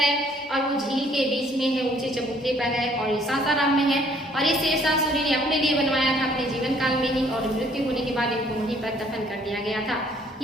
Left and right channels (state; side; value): normal; both; correlation 0.61